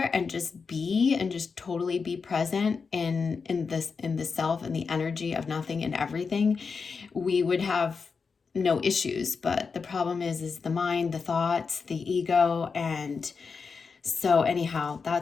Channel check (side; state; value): right; quieter; 5.2 dB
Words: and just be, and just totally be present in the self and the energy of nothing and everything, we would have no issues. But the problem is the mind, the thoughts, the ego. And so anyhow,